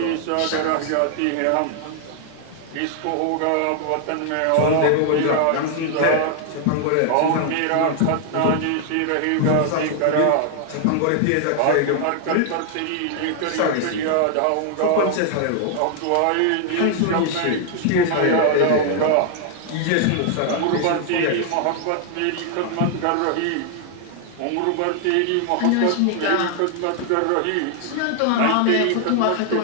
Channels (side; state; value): both; different; correlation 0.00